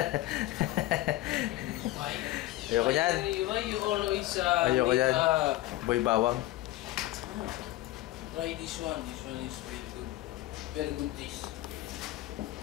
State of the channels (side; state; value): right; quieter; 16.6 dB